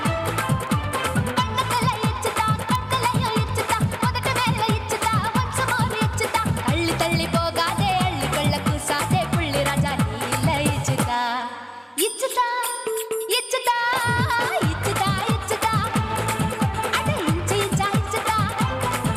கண்ணத்துல இச்சுதா கண்ணலையும் இச்சுதா உதட்டு மேல இச்சுதா வம்சமோர் இச்சுதா தள்ளி தள்ளி போகாதே அள்ளி கொள்ள கூசாதே புள்ளி ராஜா நீ இல்ல இச்சுதா இச்சுதா இச்சுதா இச்சுதா இச்சுதா அட இஞ்சி இஞ்சா இச்சுதா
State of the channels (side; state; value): both; identical; correlation 1.00